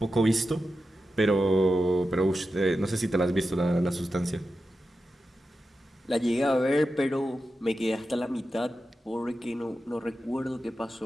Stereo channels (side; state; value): both; normal; correlation 0.91